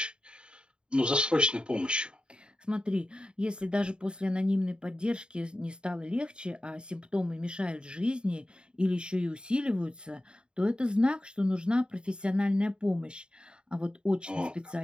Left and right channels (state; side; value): late; left; 0.051 ms